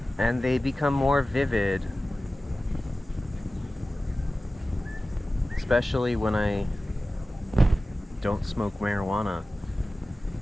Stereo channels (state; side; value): normal; both; correlation 0.96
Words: and they become more vivid, especially when I don't smoke marijuana,